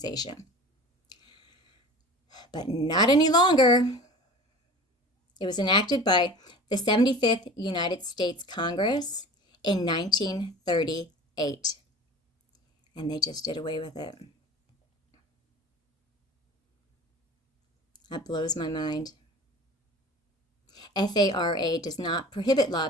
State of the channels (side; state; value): both; normal; correlation 0.40